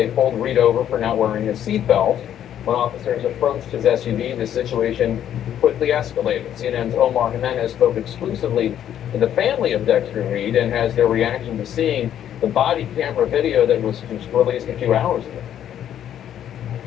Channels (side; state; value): right; quieter; 10.4 dB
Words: pulled Reed over for not wearing his seatbelt. When officers approached his SUV, the situation quickly escalated. CNN's Omar Jimenez spoke exclusively to the family of Dexter Reed and has their reaction to seeing the body camera video that was released a few hours ago.